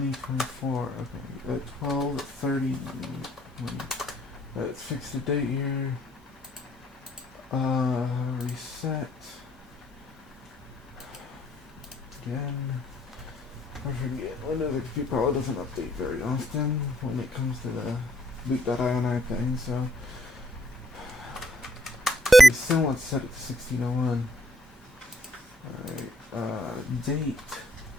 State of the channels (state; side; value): normal; both; correlation 0.68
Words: Okay, 12/30. Let's fix the date here. Reset. Again. I forget. Windows XP probably doesn't update very often when it comes to the boot.ini thing, so we still want to set it to 1601. Alright, date.